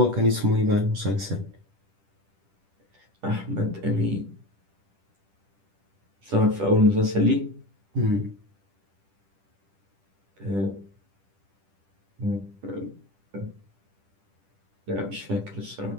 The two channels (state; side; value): late; left; 10 ms